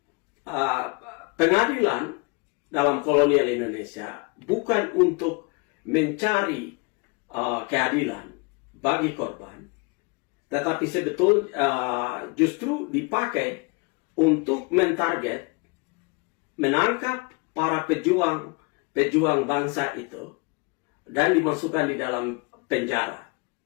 pengadilan dalam kolonial Indonesia bukan untuk mencari keadilan bagi korban, tetapi sebetulnya justru dipakai untuk mentarget, menangkap para pejuang bangsa itu dan dimasukkan di dalam penjara.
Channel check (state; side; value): quieter; right; 30.2 dB